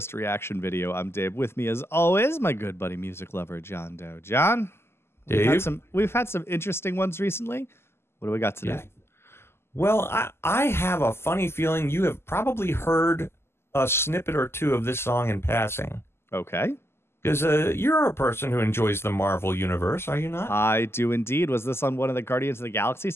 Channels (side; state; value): right; late; 0.12 ms